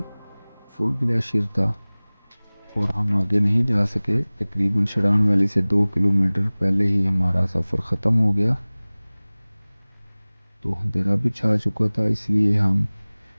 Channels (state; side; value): inverted; both; correlation -1.00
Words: फुल ग्लेशियर था और हम आगे नहीं जा सके। तकरीबन शरान वैली से 2 किलोमीटर पहले ही हमारा सफ़र ख़त्म हो गया, तो अंधेरा भी छा चुका था, इसलिए हम